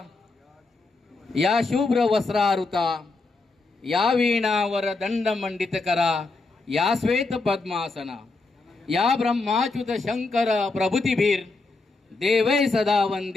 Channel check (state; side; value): quieter; right; 3.5 dB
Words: या शुभ्र वस्त्रारुता, या वीणावर दंड मंडित करा, या श्वेत पद्मासना, या ब्रह्माच्युत शंकर प्रभुतीभीर देवै सदा